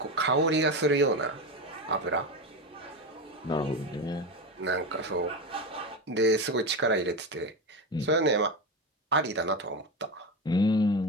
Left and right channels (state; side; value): normal; both; correlation 0.18